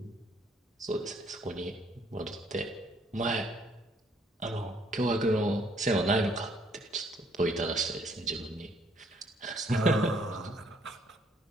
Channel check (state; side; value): normal; both; correlation 0.65